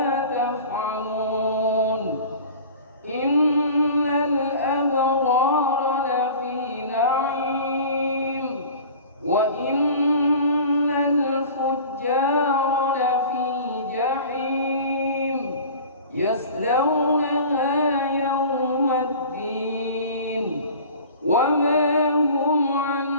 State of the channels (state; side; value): inverted; both; correlation -0.41